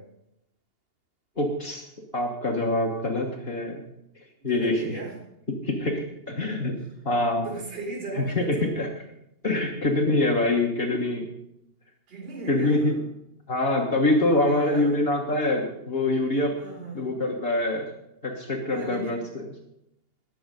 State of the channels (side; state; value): left; late; 2.8 ms